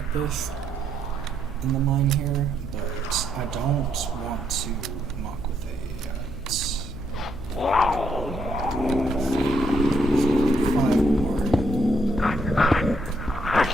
this in the mine here, but I don't want to muck with a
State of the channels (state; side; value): noise; left; hum, 13 dB below the sound